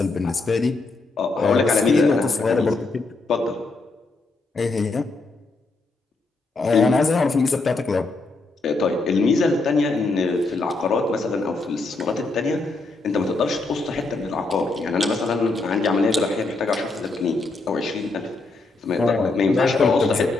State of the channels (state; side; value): quieter; right; 3.4 dB